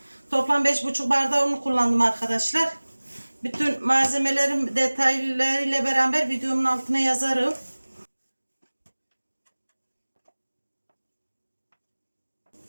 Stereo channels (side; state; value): both; inverted; correlation -1.00